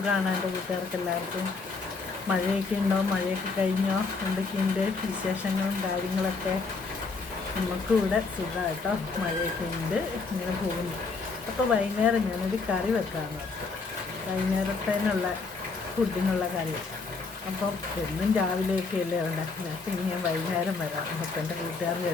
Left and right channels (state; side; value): quieter; right; 4.3 dB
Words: എൻ്റെ കൂട്ടുകാർക്ക് എല്ലാവർക്കും. മഴയൊക്കെ ഉണ്ടോ? മഴയൊക്കെ കഴിഞ്ഞോ? എന്തൊക്കെയുണ്ട് വിശേഷങ്ങളും കാര്യങ്ങളൊക്കെ? നമുക്കും ഇവിടെ സുഖമാണ് കേട്ടോ. മഴയൊക്കെ ഉണ്ട്, ഇങ്ങനെ പോകുന്നു. അപ്പോൾ വൈകുന്നേരം ഞാനൊരു കറി വെക്കാമെന്ന് ഓർത്തു. വൈകുന്നേരത്തേനുള്ള ഫുഡിനുള്ള കറി. അപ്പം എന്നും രാവിലെയൊക്കെ അല്ലേ ഉണ്ടാക്കുന്നത്. അപ്പം ഇനി ഞാൻ വൈകുന്നേരം വരാം അപ്പം എൻ്റെ കൂട്ടുകാരുടെ